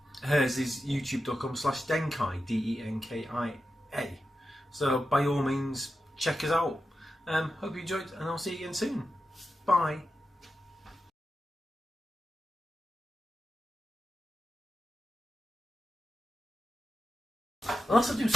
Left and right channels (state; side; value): normal; both; correlation 0.90